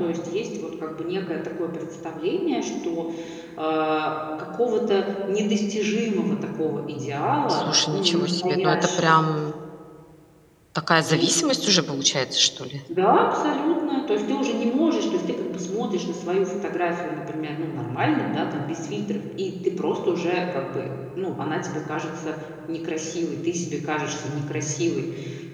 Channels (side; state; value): both; identical; correlation 1.00